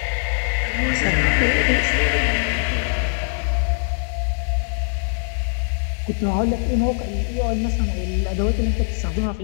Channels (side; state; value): right; silent; 64 dB below the other